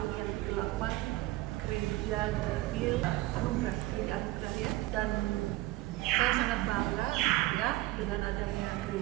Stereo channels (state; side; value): quieter; left; 18.1 dB